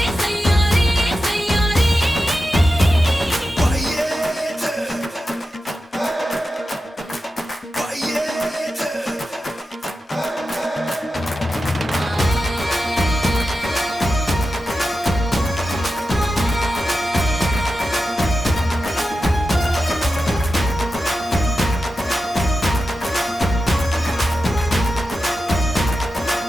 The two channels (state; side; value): normal; both; correlation 0.91